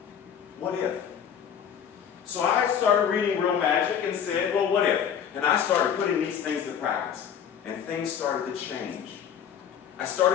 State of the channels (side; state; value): right; quieter; 8.4 dB